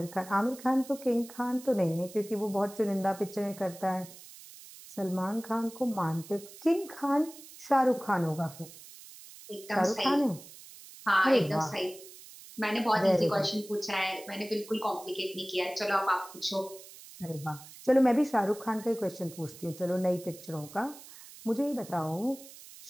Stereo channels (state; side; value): noise; right; hiss, 18 dB below the sound